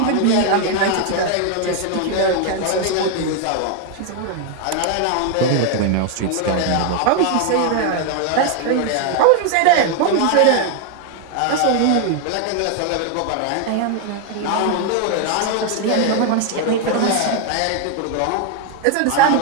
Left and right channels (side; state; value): both; different; correlation 0.00